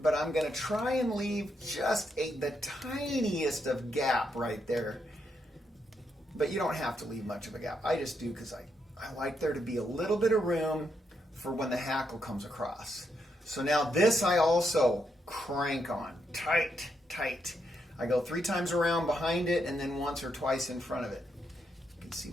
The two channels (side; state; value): both; normal; correlation 0.80